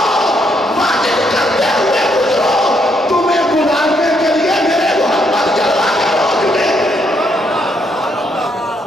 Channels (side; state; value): both; normal; correlation 0.74